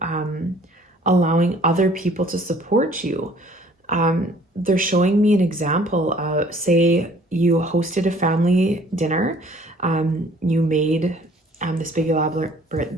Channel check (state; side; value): normal; both; correlation 0.55